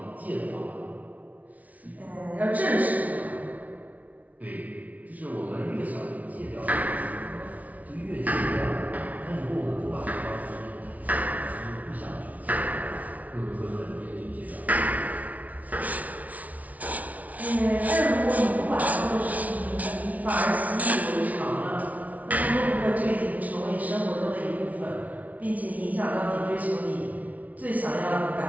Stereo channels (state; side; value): late; left; 0.071 ms